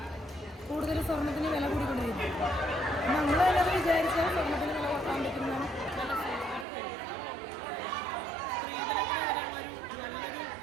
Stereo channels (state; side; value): drops out; left; at 6.7 s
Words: കൂടുതൽ സ്വർണത്തിന് വില കൂടിക്കൊണ്ടിരിക്കുന്നത്. നമ്മൾ തന്നെ അത് വിചാരിച്ചാൽ സ്വർണത്തിന് വില കുറക്കാൻ പറ്റുന്നതാണ്. നല്ലൊരു